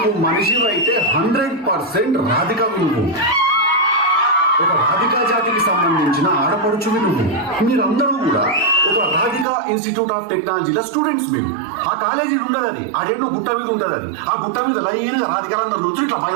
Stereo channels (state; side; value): drops out; left; at 9.5 s